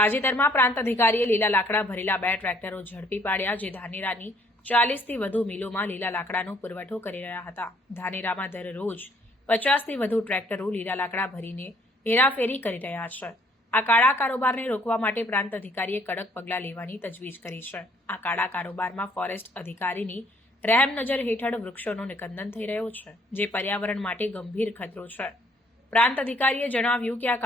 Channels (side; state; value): both; normal; correlation 0.63